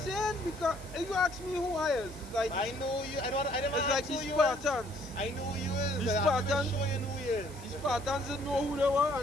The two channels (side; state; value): right; noise; hiss, 19 dB below the sound